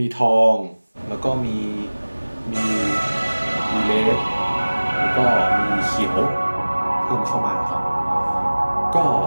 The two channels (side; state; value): both; inverted; correlation -1.00